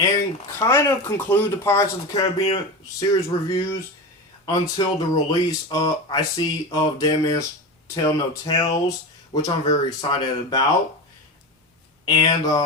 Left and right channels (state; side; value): normal; both; correlation 0.24